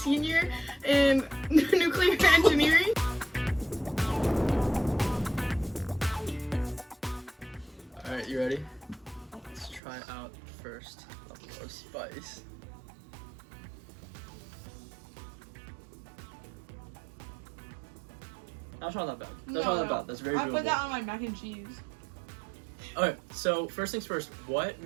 in nuclear engineering. Alright, you ready? Let's try out first level of spice. That's not that bad. That's not that bad. That's very doable. I put that on my mac and cheese. Okay, so first things first, what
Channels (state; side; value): drops out; left; at 9.8 s